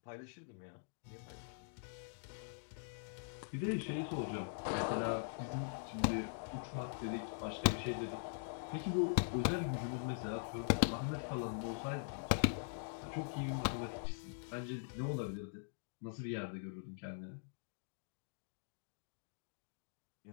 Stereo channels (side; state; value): right; silent; digital silence